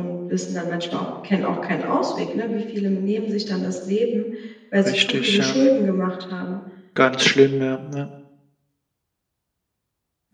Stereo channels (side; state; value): both; identical; correlation 1.00